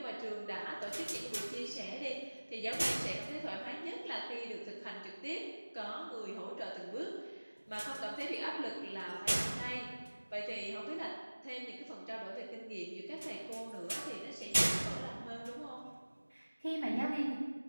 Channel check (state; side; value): inverted; both; correlation -1.00